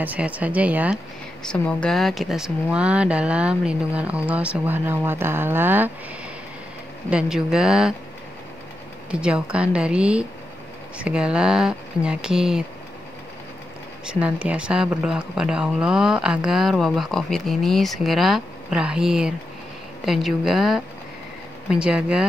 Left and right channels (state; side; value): normal; both; correlation 0.88